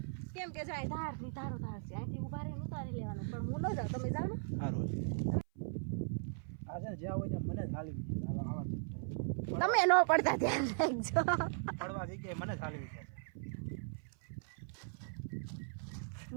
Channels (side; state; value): left; silent; 52 dB below the other